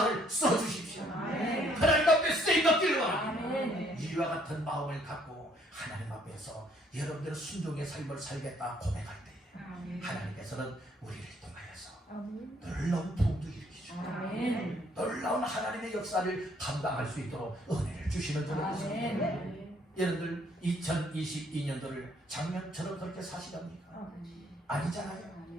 써주십시오. 아멘. 하나님 앞에 쓰임받기를 원합니다. 아멘. 이와 같은 마음을 갖고 하나님 앞에서 여러분들의 순종의 삶을 살겠다 고백할 때에 아멘. 하나님께서는 우리를 통하여서 아멘. 놀라운 부흥도 일으키시고 아멘. 놀라운 하나님의 역사를 감당할 수 있도록 은혜를 주시는 줄로 믿습니다. 아멘. 여러분들 2022년도를 작년처럼 그렇게 사시렵니까? 아니잖아요.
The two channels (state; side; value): normal; both; correlation 0.65